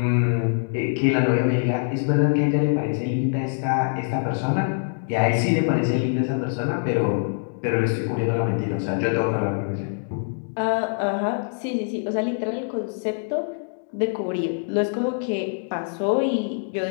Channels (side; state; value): right; silent; digital silence